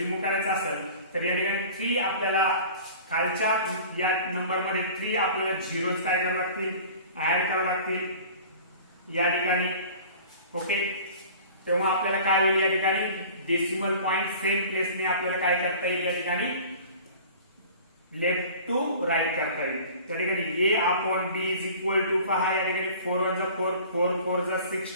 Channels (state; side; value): inverted; both; correlation -0.43